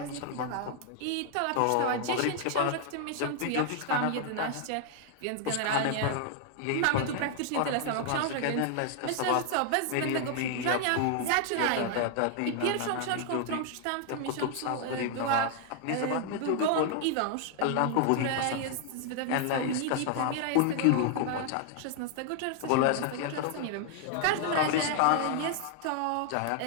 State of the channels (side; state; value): both; different; correlation 0.00